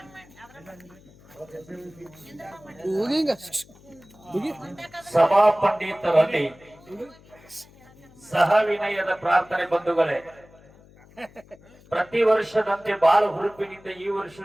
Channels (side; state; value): left; noise; hum, 25 dB below the sound